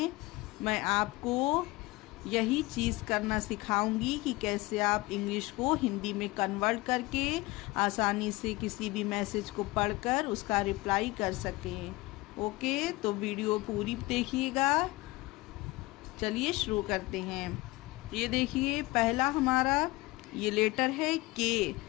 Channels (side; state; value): right; quieter; 21.2 dB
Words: मैं आपको यही चीज़ करना सिखाऊंगी कि कैसे आप इंग्लिश को हिंदी में कन्वर्ट करके आसानी से किसी भी मैसेज को पढ़कर उसका रिप्लाई कर सकें। ओके, तो वीडियो पूरी देखिएगा। चलिए शुरू करते हैं। ये देखिए, पहला हमारा ये लेटर है के।